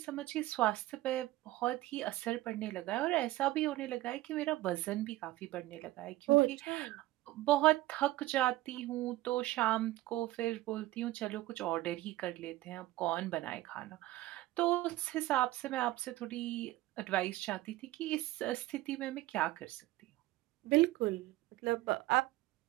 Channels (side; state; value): left; quieter; 17.2 dB